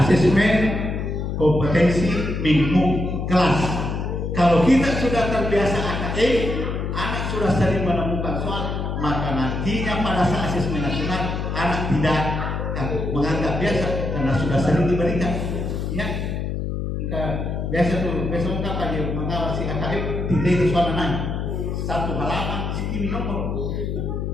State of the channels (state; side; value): noise; left; hum, 3 dB below the sound